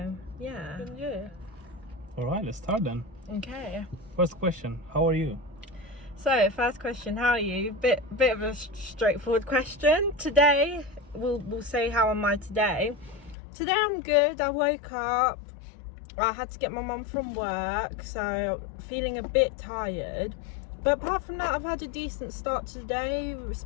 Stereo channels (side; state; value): right; drops out; at 13.4 s